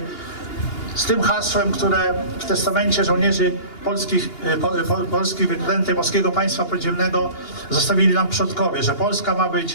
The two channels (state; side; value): late; right; 2.8 ms